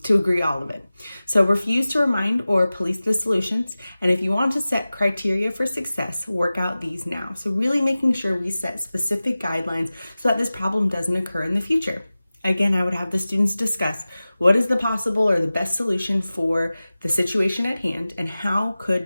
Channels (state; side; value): inverted; both; correlation -0.97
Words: agree all of it. So refuse to remind or police the solutions. And if you want to set criteria for success, work out these now. So really making sure we set specific guidelines so that this problem doesn't occur in the future. Again, I would have the students discuss what is the possible or the best solution for the situation at hand and how